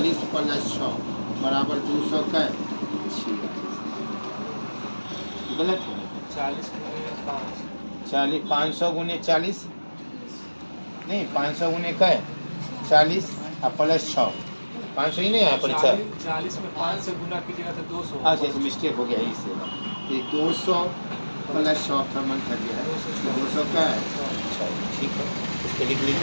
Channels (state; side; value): inverted; both; correlation -1.00